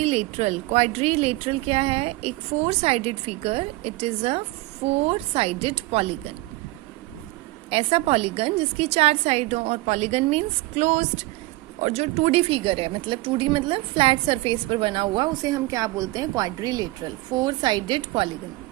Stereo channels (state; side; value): quieter; left; 20.6 dB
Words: क्या है? एक 4 sided figure. It is a 4 sided polygon. ऐसा पॉलीगन जिसकी 4 साइड हो, और पॉलीगन मीन्स क्लोज्ड। और जो 2D फिगर है, मतलब 2D मतलब फ्लैट सरफेस पर बना हुआ, उसे हम क्या बोलते हैं? Quadrilateral, 4 sided polygon.